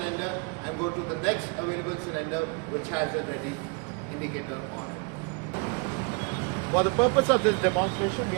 and go to the next available cylinder which has a ready indicator on it. For the purpose of this demonstration, we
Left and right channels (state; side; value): quieter; left; 33.1 dB